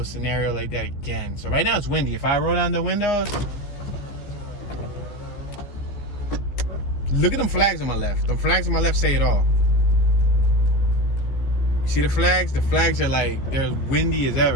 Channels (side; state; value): right; late; 15 ms